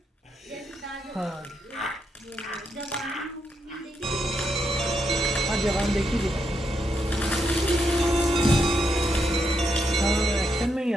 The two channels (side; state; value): both; normal; correlation 0.81